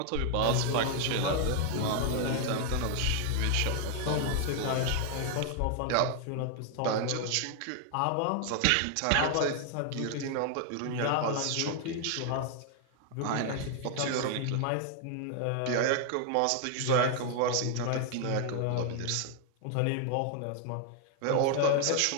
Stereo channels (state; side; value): different; both; correlation 0.00